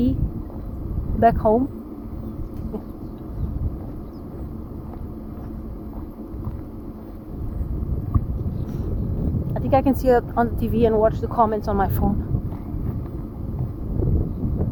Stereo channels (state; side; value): identical; both; correlation 1.00